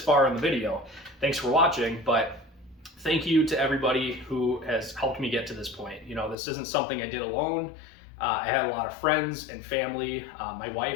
in the video. Thanks for watching, but thank you to everybody who has helped me get to this point. You know, this isn't something I did alone. I had a lot of friends and family, my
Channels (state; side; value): drops out; right; at 6.4 s